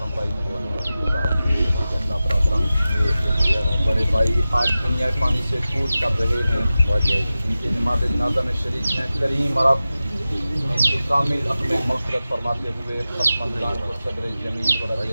भाई मोहम्मद बड़े भाई आज दुनिया पानी से कूच कर रहे हैं। इनकी नमाज़ जनाज़ा में शरीक हैं। करीम रब इनकी कामिल अपने मग़फ़िरत फरमाते हुए ख़त्म को सदर जमील वरज़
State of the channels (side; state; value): both; inverted; correlation -0.95